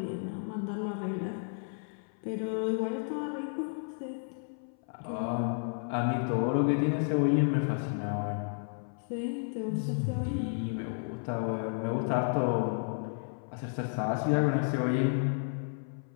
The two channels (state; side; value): silent; right; 56 dB below the other